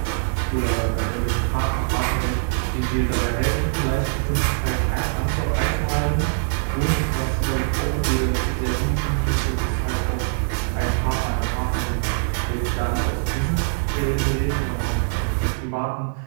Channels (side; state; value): left; silent; digital silence